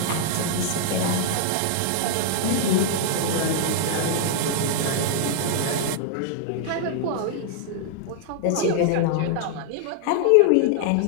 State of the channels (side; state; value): both; different; correlation -0.01